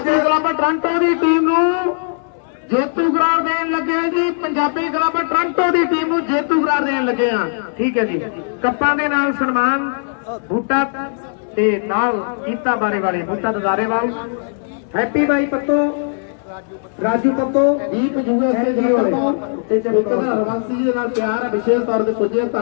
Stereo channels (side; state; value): right; silent; 66 dB below the other